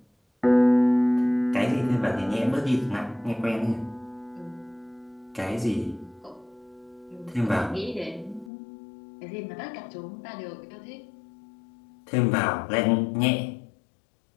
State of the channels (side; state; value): right; drops out; at 8.5 s